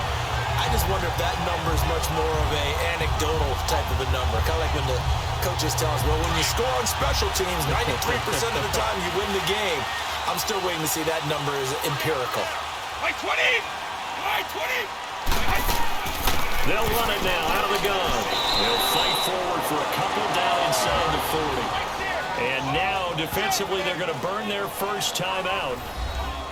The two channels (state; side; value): identical; both; correlation 1.00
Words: I just wonder if that number is much more of a anecdotal type of a number. Kind of like when the coaches tell us, well, when you score on special teams, 93% of the time you win the game. I'm still waiting to see that number is empirical. By 20! By 20! They'll run it now out of the gun. They'll fight forward for a couple down inside the 40. And now, defensively, they're going to burn their first time out.